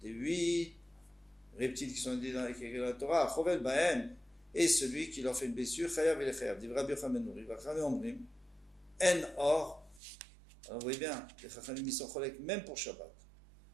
des 8 reptiles qui sont dit dans la Torah, chovel bahem, et celui qui leur fait une blessure, chayav et chayav. Dit Rabbi Yochanan ben Nouri, Vachame omrim, en or. Alors vous voyez bien, les Chachamim ils sont cholek même pour Shabbat.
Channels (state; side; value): drops out; left; at 10.0 s